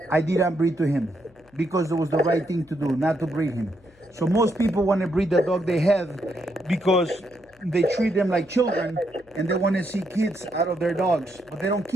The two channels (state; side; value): noise; left; hum, 29 dB below the sound